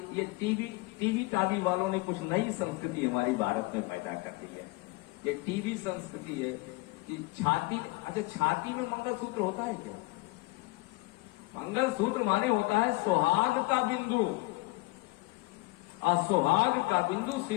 ये टीवी टावी वालों ने कुछ नई संस्कृति हमारी भारत में पैदा कर दी है। ये टीवी संस्कृति है कि छाती में मंगलसूत्र होता है क्या? मंगलसूत्र माने होता है सुहाग का बिंदु, और सुहाग का बिंदु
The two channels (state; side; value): quieter; right; 23.0 dB